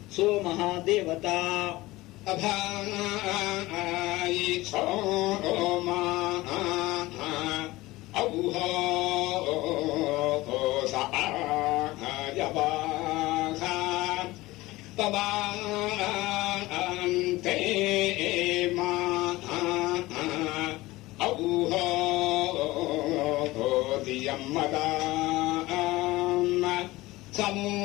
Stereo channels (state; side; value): quieter; right; 19.3 dB